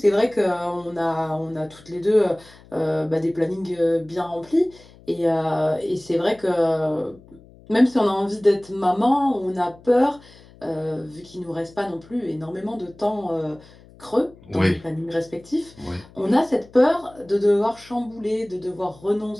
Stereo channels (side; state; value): left; noise; hum, 24 dB below the sound